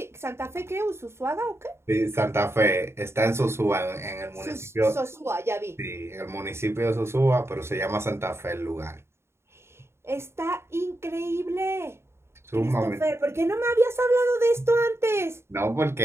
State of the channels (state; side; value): late; left; 0.12 ms